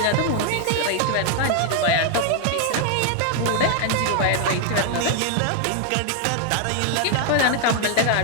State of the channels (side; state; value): both; different; correlation 0.00